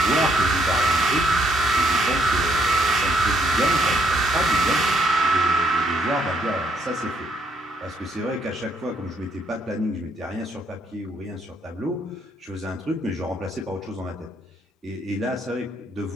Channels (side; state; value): both; normal; correlation 0.69